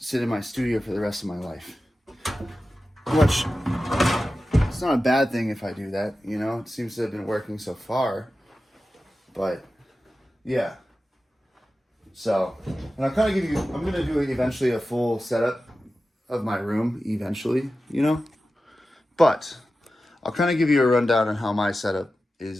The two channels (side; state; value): both; normal; correlation 0.93